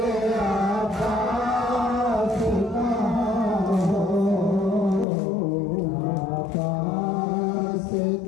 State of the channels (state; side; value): drops out; right; at 5.1 s